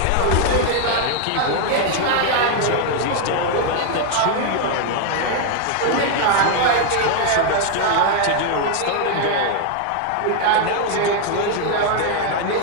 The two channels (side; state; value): both; different; correlation 0.00